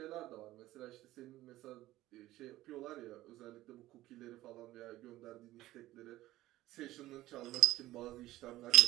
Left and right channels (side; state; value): left; quieter; 16.0 dB